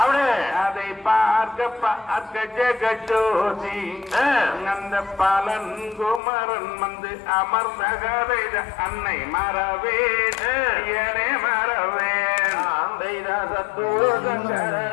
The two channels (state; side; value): drops out; right; at 6.2 s